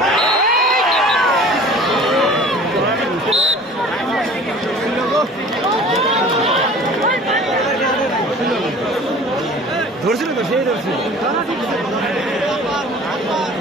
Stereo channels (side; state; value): both; normal; correlation 0.45